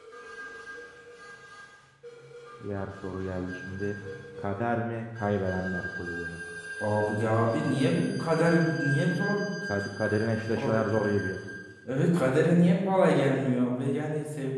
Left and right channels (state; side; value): identical; both; correlation 1.00